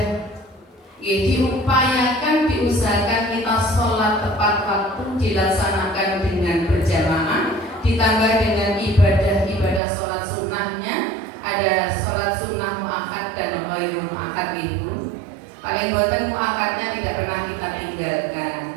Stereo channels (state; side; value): drops out; left; at 9.8 s